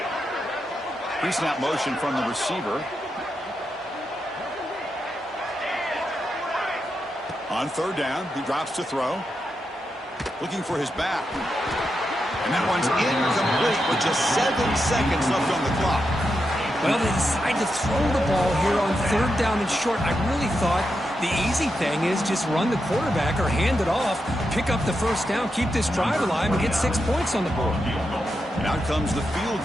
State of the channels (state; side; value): normal; both; correlation 0.86